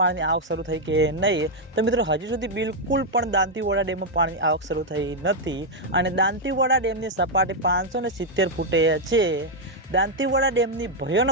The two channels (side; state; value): both; normal; correlation 0.00